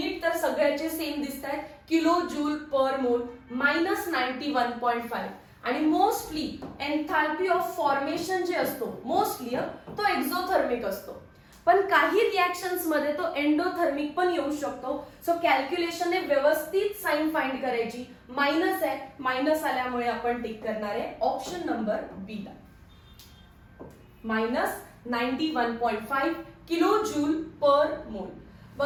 तर सगळ्याचे सेम दिसत आहेत, किलो जूल पर मोल, -91.5. आणि मोस्टली एन्थाल्पी ऑफ फॉर्मेशन जे असतो, मोस्टली तो एक्झोथर्मिक असतो, पण काही रिॲक्शन्स मध्ये तो एंडोथर्मिक पण येऊ शकतो. सो कॅल्क्युलेशनने व्यवस्थित साइन फाइंड करायची. मायनस आहे, मायनस आल्यामुळे आपण टिक करणार आहे ऑप्शन नंबर बी ला, -91.5 किलो जूल पर मोल.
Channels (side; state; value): both; identical; correlation 1.00